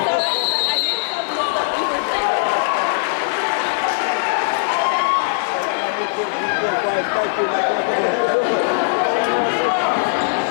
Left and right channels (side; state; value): right; silent; 55 dB below the other